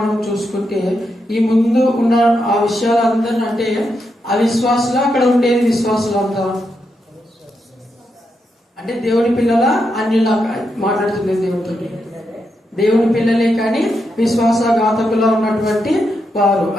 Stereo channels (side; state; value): both; normal; correlation 0.83